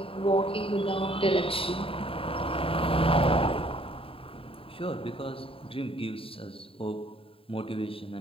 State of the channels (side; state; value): right; late; 0.27 ms